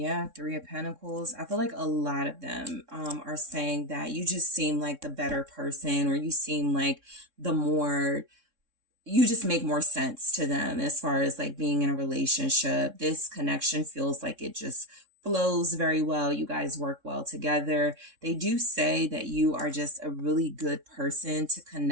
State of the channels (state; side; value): late; left; 3.6 ms